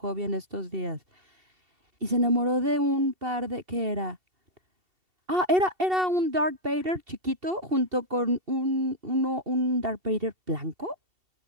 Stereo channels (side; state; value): left; late; 2.7 ms